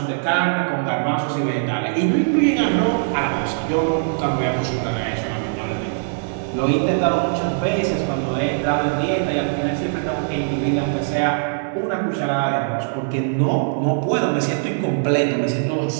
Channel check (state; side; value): silent; left; digital silence